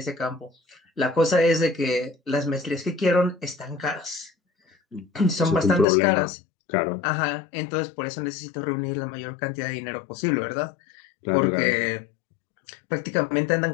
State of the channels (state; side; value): drops out; right; at 5.9 s